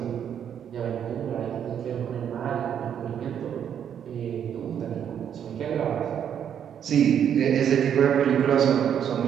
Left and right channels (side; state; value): left; quieter; 8.8 dB